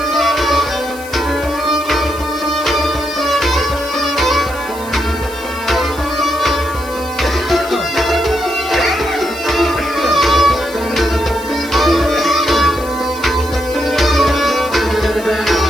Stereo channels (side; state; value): left; noise; hiss, 17 dB below the sound